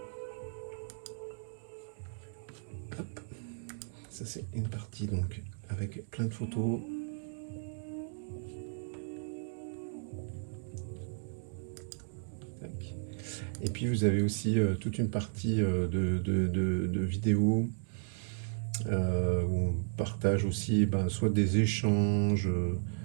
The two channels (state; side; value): silent; left; digital silence